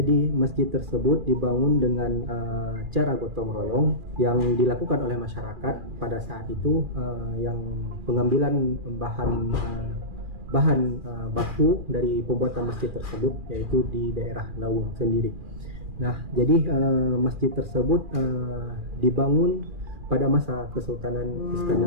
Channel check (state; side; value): late; left; 2.4 ms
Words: masjid tersebut dibangun dengan cara gotong royong yang dilakukan oleh masyarakat pada saat itu, yang pengambilan bahan baku dari pembuatan masjid tersebut yaitu di daerah Lawung sendiri. Nah, jadi masjid tersebut dibangun pada masa Kesultanan